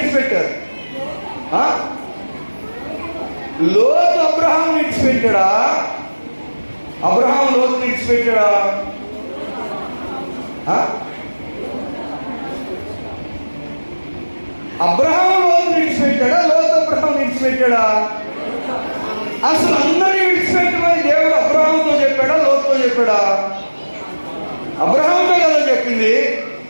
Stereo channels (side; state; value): both; inverted; correlation -1.00